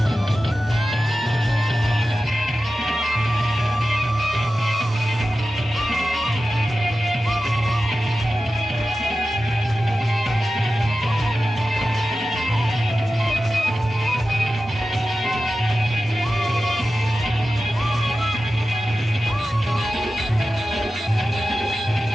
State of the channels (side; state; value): both; normal; correlation 0.93